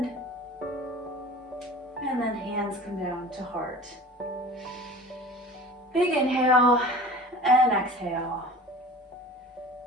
And then hands come down to heart. Big inhale and exhale.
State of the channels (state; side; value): normal; both; correlation 0.40